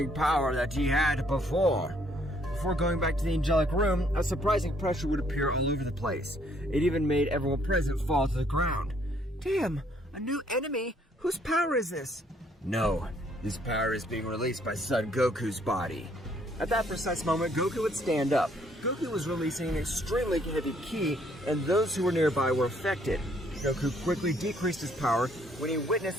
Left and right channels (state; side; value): normal; both; correlation 0.66